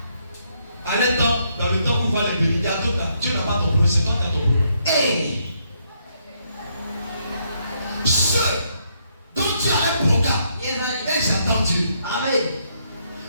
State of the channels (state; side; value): inverted; both; correlation -0.74